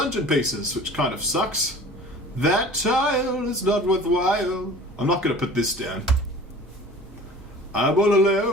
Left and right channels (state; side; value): normal; both; correlation 0.43